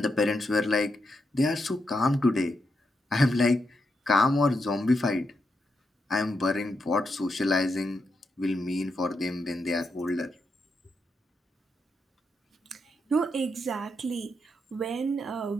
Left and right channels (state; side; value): normal; both; correlation 0.83